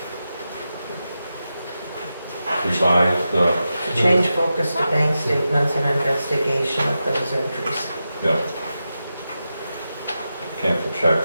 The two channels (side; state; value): both; inverted; correlation -0.90